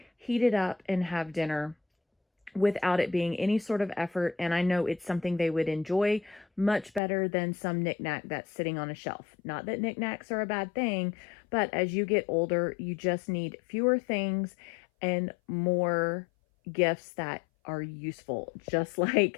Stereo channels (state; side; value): drops out; right; at 7.0 s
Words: heat it up, and have dinner without it being any sort of effort. And I know it's something they would enjoy much better than some knickknack that's sitting on a shelf. Not that knickknacks are a bad thing, but as you get older, you just need fewer things and more gifts that are useful, just